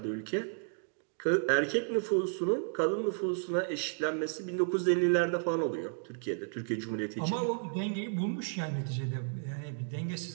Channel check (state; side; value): silent; left; digital silence